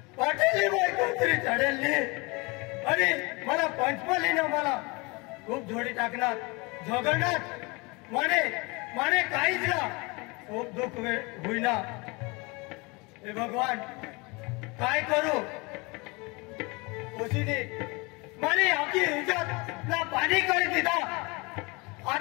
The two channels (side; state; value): right; quieter; 26.9 dB